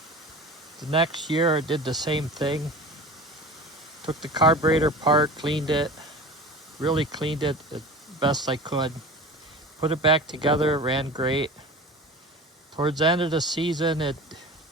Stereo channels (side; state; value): both; normal; correlation 0.35